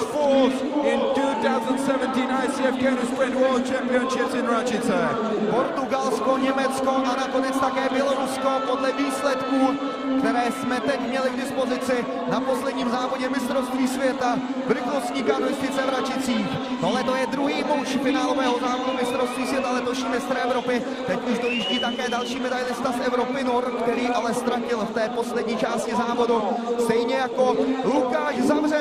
fourth in 2017 ICF Canoe Sprint World Championships in Račice. Portugalsko, Německo a nakonec také Bělorusko podle výsledků, které jsme teď měli k dispozici na posledním závodě mistrovství světa v rychlostní kanoistice v Račicích. Tohle to je druhý muž finálového závodu mistrovství světa, letošní mistr Evropy. Teď už dojíždí také další medailista z Evropy Nor, který ale ztratil v té poslední části závodu. Stejně jako Lukáš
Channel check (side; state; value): both; identical; correlation 1.00